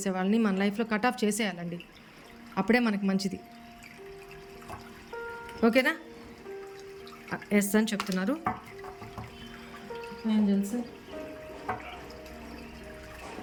వాళ్ళని మన లైఫ్లో కట్ ఆఫ్ చేసేయాలండి. అప్పుడే మనకి మంచిది. ఓకేనా? ఎస్ అని చెప్తున్నారు angels.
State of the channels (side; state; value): both; identical; correlation 1.00